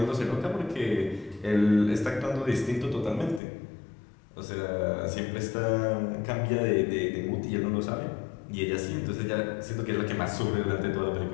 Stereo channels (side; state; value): right; drops out; at 3.4 s